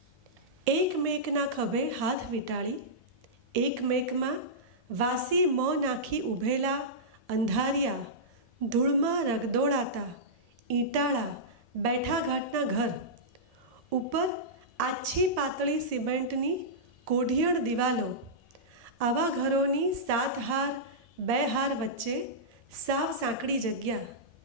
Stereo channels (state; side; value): late; left; 1.7 ms